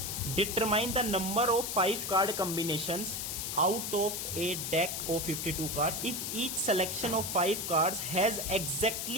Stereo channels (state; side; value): noise; left; hiss, 3 dB below the sound